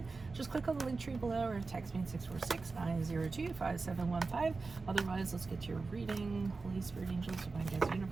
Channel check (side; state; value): left; quieter; 4.0 dB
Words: Just click on the link tree below or text me at 646-902-5715. Otherwise, let's get to your reading. Holy Spirit, Angels, Divine Guides,